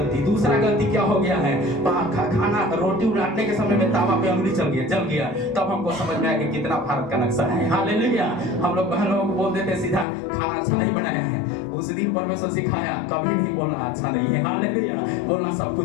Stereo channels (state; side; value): drops out; right; at 10.1 s